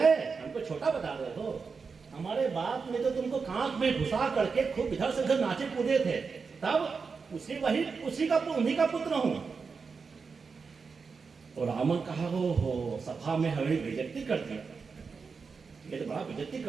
हमको छोटा बता रहे हो, हमारे बाप ने तो तुमको कांख में घुसा करके खूब इधर से उधर नाचे कूदे थे, तब उन्हीं का पुत्र हूं। और रावण कहा, हो सभा में हमें बेइज्जती कर दिया, ये तो बड़ा बेइज्जती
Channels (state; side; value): quieter; left; 5.1 dB